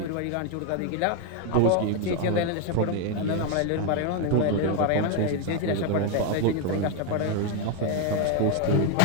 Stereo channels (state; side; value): different; both; correlation 0.01